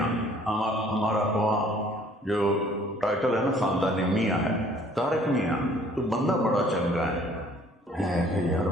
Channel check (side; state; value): both; normal; correlation 0.57